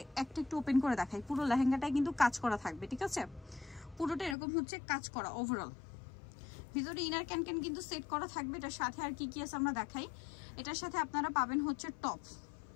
একটা একটু ওপেন করে দেখাই। পুরো লেহেঙ্গাটাই কিন্তু কাজ করা থাকবে, ঠিক আছে? পুরোটা এরকম হচ্ছে কাজ করা ওভারঅল। ভিতরে ইনার ক্যান কিন্তু সেট করা থাকবে। এটার সাথে আর কি কি আছে আমরা দেখাই। এটার সাথে আপনারা পাবেন হচ্ছে টপ।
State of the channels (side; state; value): right; drops out; at 4.4 s